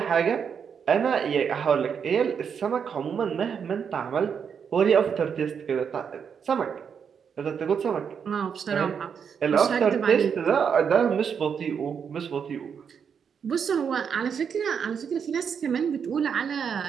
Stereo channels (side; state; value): left; quieter; 7.0 dB